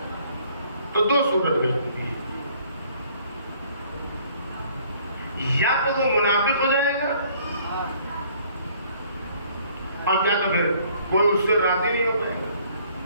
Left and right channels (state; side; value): inverted; both; correlation -0.60